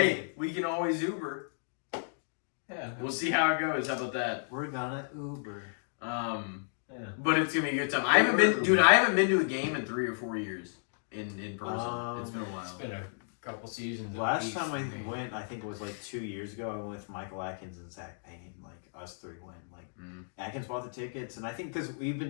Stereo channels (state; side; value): silent; right; digital silence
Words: we can always Uber. Yeah. We'll see how it goes. How about that? We're gonna Uber. Yeah. But it's gonna be a good time. I haven't been to a game in 3 or 4 years in person. It's been a while. It's been a couple seasons. Last time I went, I think it was like 2 years ago. I went with Michael Atkins and Zach Payne. Like us three went. Like Atkins bought the tickets, and I think because we've been